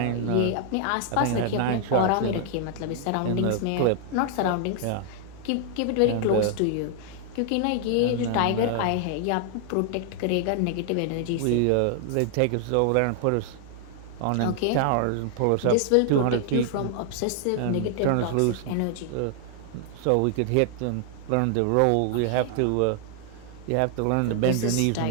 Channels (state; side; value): different; both; correlation 0.00